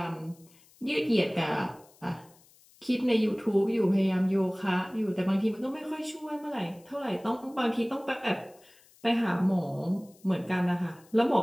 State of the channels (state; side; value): noise; left; hiss, 28 dB below the sound